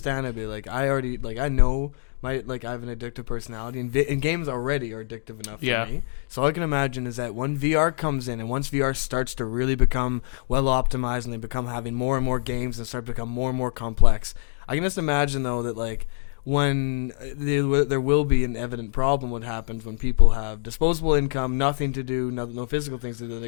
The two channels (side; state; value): right; silent; digital silence